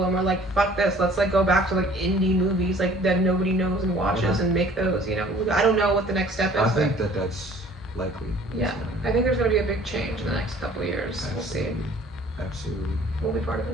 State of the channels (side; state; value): both; normal; correlation 0.52